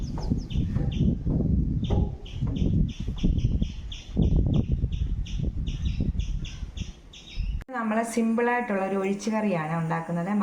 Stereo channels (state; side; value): identical; both; correlation 1.00